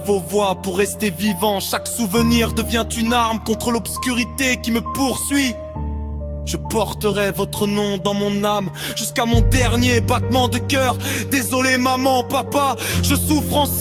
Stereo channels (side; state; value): both; identical; correlation 1.00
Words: vos voix pour rester vivant. Chaque souvenir devient une arme contre l'obscurité qui me poursuit. Je porterai votre nom dans mon âme jusqu'à mon dernier battement de cœur. Désolé maman, papa, je souffre en